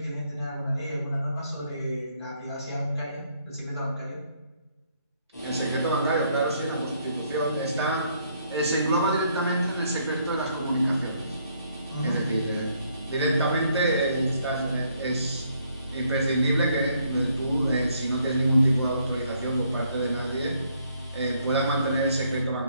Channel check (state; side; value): inverted; both; correlation -0.69